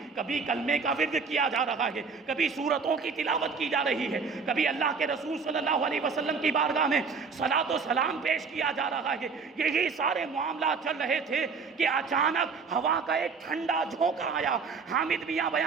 کبھی کلمے کا ورد کیا جا رہا ہے، کبھی سورتوں کی تلاوت کی جا رہی ہے، کبھی اللہ کے رسول صلی اللہ علیہ وسلم کی بارگاہ میں صلاۃ و سلام پیش کیا جا رہا ہے۔ یہی سارے معاملات چل رہے تھے کہ اچانک ہوا کا ایک ٹھنڈا جھونکا آیا۔ حامد میاں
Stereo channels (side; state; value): left; quieter; 5.1 dB